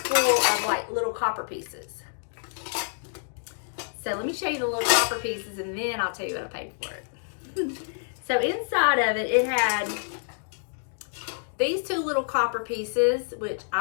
of like little copper pieces. So let me show you the little copper pieces, and then I'll tell you what I paid for it. So inside of it, it had these 2 little copper pieces, which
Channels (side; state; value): right; silent; digital silence